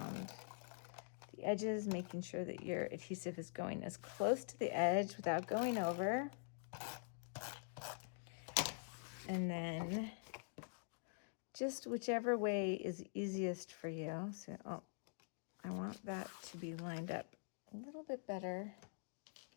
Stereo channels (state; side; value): silent; right; digital silence